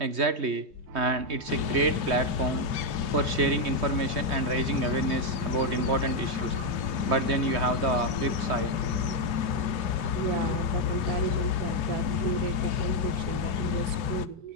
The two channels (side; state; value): left; late; 3.0 ms